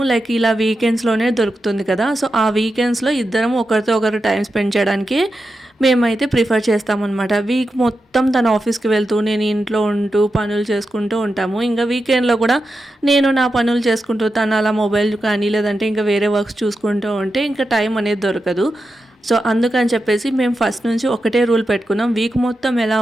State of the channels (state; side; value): normal; both; correlation 0.89